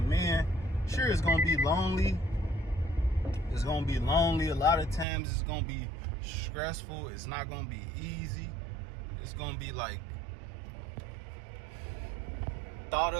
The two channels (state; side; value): drops out; left; at 5.1 s